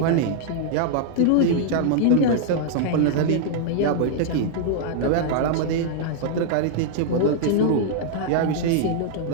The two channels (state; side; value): different; both; correlation -0.01